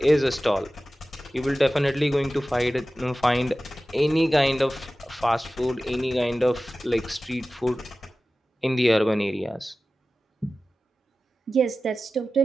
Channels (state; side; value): normal; both; correlation 0.95